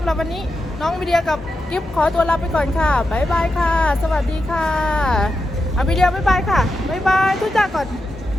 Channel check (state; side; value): normal; both; correlation 0.88